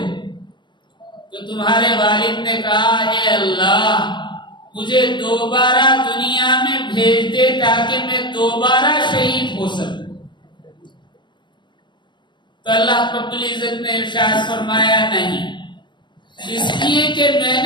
تو تمہارے والد نے کہا، اے اللہ مجھے دوبارہ دنیا میں بھیج دے تاکہ میں دوبارہ شہید ہو سکوں۔ تو اللہ رب العزت نے ارشاد فرمایا، نہیں، اس لیے کہ میں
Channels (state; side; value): late; right; 0.22 ms